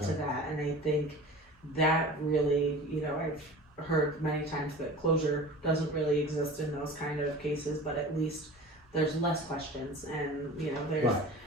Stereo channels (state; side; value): normal; both; correlation 0.38